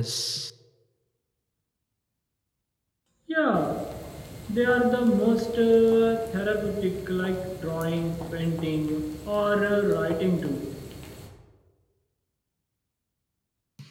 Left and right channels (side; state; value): both; identical; correlation 1.00